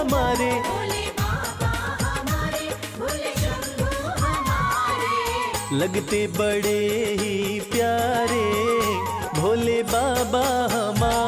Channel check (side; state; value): both; identical; correlation 1.00